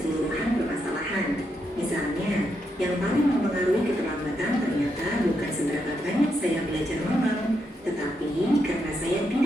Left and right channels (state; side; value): normal; both; correlation 0.81